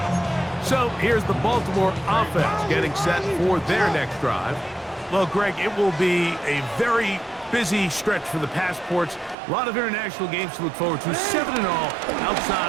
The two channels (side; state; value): left; drops out; at 9.3 s